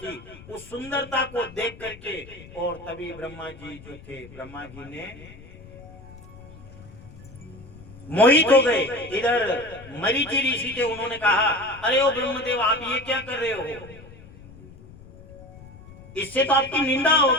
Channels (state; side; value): noise; left; rumble, 19 dB below the sound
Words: उस सुंदरता को देख करके और तभी ब्रह्मा जी जो थे ब्रह्मा जी ने मोहित हो गए। इधर मरीचि ऋषि थे, उन्होंने कहा अरे ओ ब्रह्मदेव आप ये क्या कर रहे हो, इससे तो आपकी निंदा